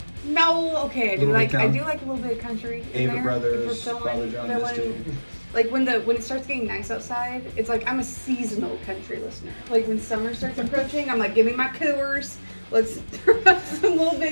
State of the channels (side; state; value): both; inverted; correlation -1.00